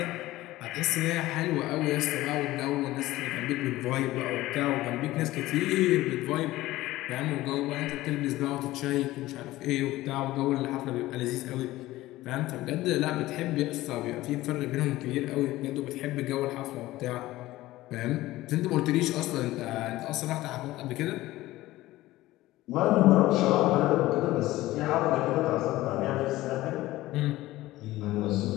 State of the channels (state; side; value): quieter; right; 17.0 dB